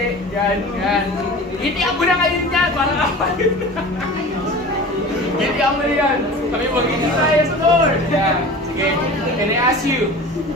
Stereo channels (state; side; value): normal; both; correlation 0.37